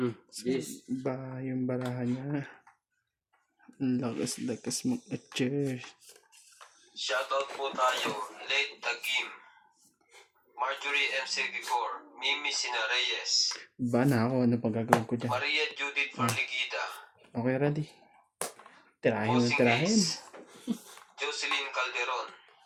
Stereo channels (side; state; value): both; identical; correlation 1.00